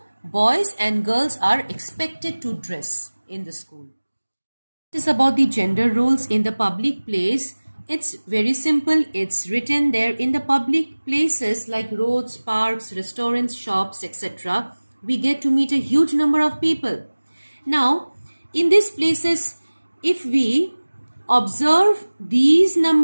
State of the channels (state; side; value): inverted; both; correlation -1.00